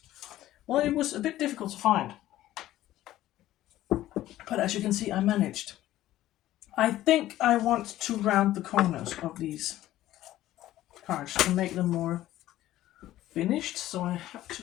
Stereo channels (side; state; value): right; quieter; 14.4 dB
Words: well, it was a bit difficult to find. But as you can see, I managed. I think I want to round the corners of these cards to make them more finished. So I have to